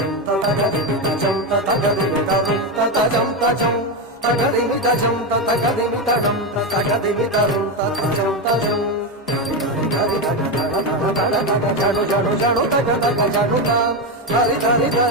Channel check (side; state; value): both; normal; correlation 0.11